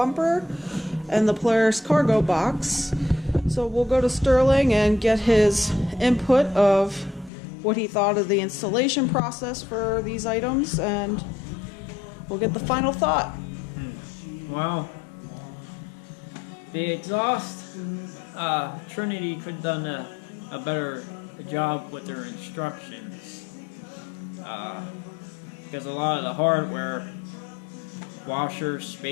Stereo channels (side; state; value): right; drops out; at 7.3 s